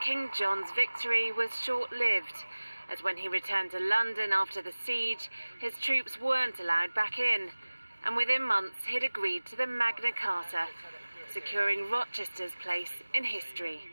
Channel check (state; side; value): inverted; both; correlation -1.00